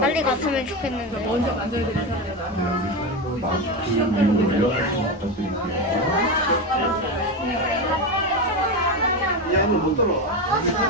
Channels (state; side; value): normal; both; correlation 0.16